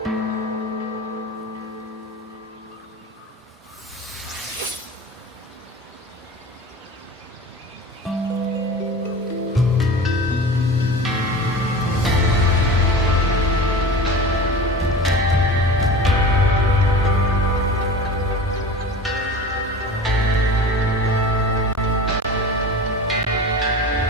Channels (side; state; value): both; normal; correlation 0.34